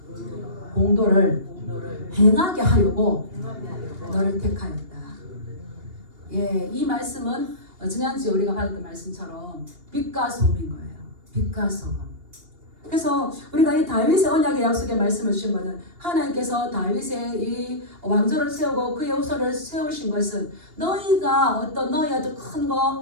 공도를 행하게 하려고 너를 택하였다. 예, 이 말씀은 지난주에 우리가 받았던 말씀처럼 빛과 소금인 거예요. 빛과 소금. 그래서 우리가 이 다윗의 언약의 약속의 말씀을 주신 것은 하나님께서 다윗의 이 왕조를 세우고 그의 후손을 세우신 것은 너희가 너희 어떤 큰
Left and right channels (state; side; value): late; left; 2.8 ms